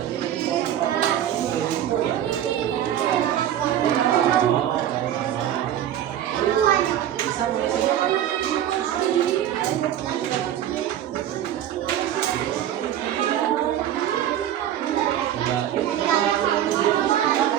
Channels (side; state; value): left; quieter; 11.2 dB